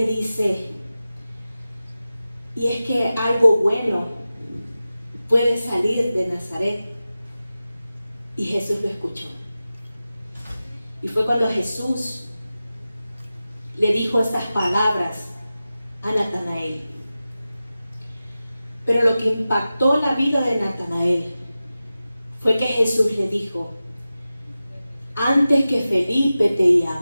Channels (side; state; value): both; inverted; correlation -0.94